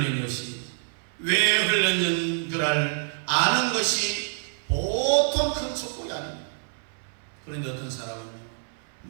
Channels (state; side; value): silent; left; 60 dB below the other